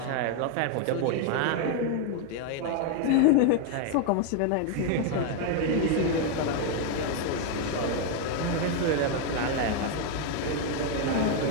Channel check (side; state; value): both; different; correlation 0.01